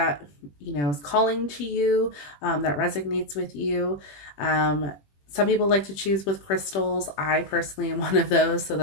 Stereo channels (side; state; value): right; late; 20 ms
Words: is calling to you, that resonates with you. Some people like to choose with crystals. I personally am one of those, so